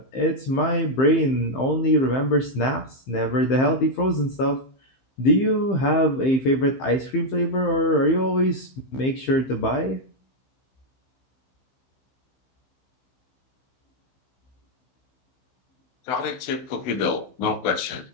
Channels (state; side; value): late; right; 15 ms